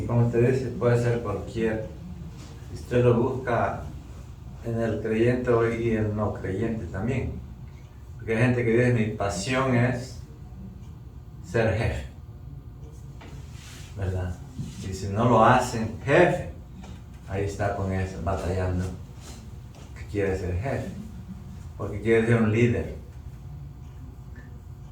como usted dice, puede ser cualquier. Usted lo busca en el creyente y el no creyente también. Porque hay gente que dice, mi pasión es ser jefe, ¿verdad? Y si no lo hacen jefe, ahí está con eso, batallando, que quiere ser jefe, porque quiere ser un líder.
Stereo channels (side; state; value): both; identical; correlation 1.00